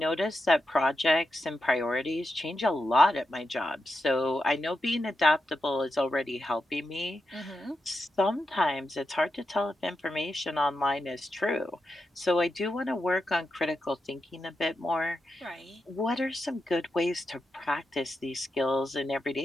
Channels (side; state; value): both; normal; correlation 0.87